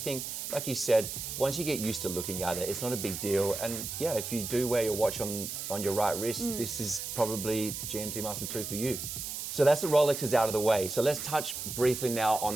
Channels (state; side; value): noise; right; hiss, 6 dB below the sound